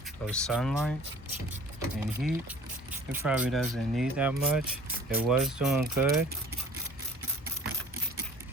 of sunlight and heat. It probably doesn't need that much. It was doing good.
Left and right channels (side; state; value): both; normal; correlation 0.47